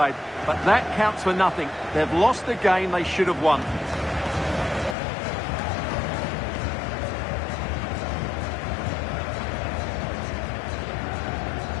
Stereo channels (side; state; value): right; drops out; at 5.0 s